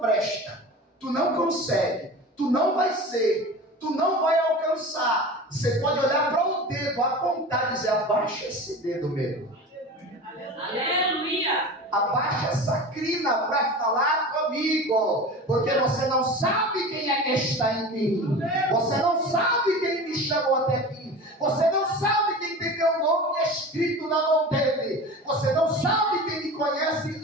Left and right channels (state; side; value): normal; both; correlation 0.33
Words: presta, tu não consegue, tu não vai ser, tu não vai alcançar. Você pode olhar para o dedo, apontar e dizer, abaixa esse dedo, medo. Aleluia! Abaixa essa crina para falar comigo, porque você não sabe quem é que está em mim, você não sabe quem me chamou até aqui, você não sabe quem tem meu nome escrito na mão dele, você não sabe quem me conhece